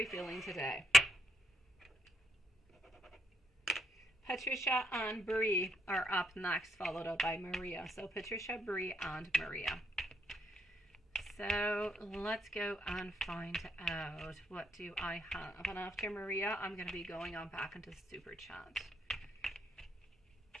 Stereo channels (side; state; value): both; normal; correlation 0.76